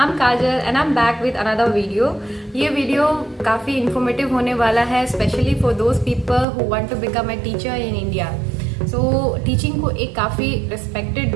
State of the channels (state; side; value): drops out; left; at 6.5 s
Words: Kajal and I'm back with another video. ये video काफ़ी informative होने वाला है, specially for those people who want to become a teacher in India. So teaching को एक काफ़ी respected